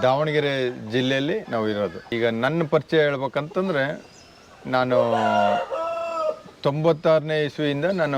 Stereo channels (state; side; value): identical; both; correlation 1.00